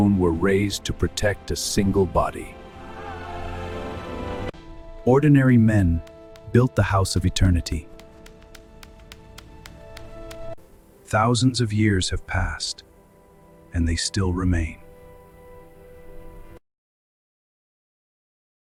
were raised to protect a single body. Ordinary men built the house of eternity. Thousands of years have passed, and they still remain.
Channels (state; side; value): identical; both; correlation 1.00